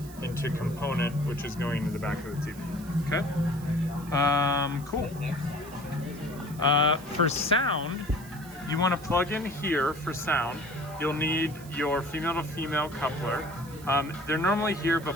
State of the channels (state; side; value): noise; right; hiss, 19 dB below the sound